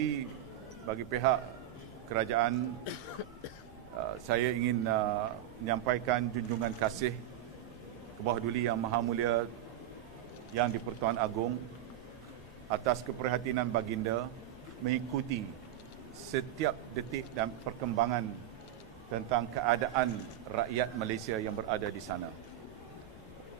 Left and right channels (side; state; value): left; quieter; 12.0 dB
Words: bagi pihak kerajaan, saya ingin menyampaikan junjungan kasih Bawah Duli Yang Maha Mulia Yang di-Pertuan Agong atas keprihatinan baginda mengikuti setiap detik dan perkembangan tentang keadaan rakyat Malaysia yang berada di sana.